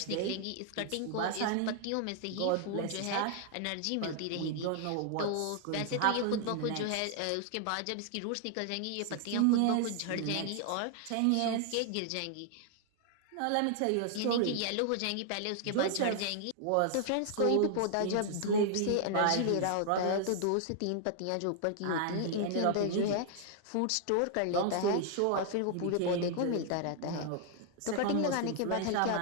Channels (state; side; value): different; both; correlation 0.00